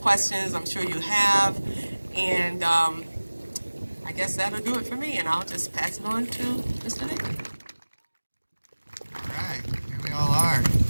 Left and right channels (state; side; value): inverted; both; correlation -1.00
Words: I'm sure you have. And I guess that'll do it for me, and I'll just pass it on to Mr. Nick. All right, here we all are.